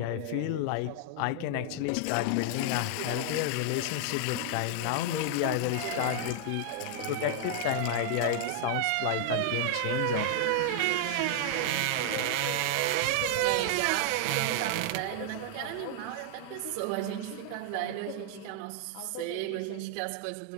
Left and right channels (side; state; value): both; different; correlation -0.01